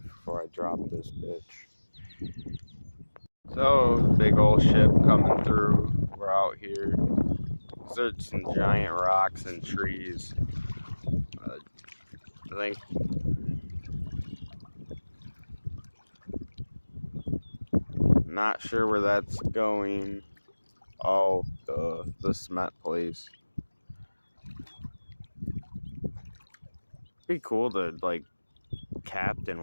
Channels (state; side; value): inverted; both; correlation -1.00